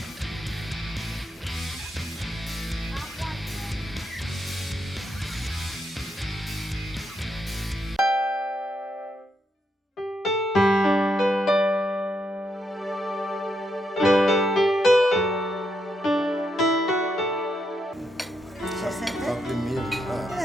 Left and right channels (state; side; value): normal; both; correlation 0.80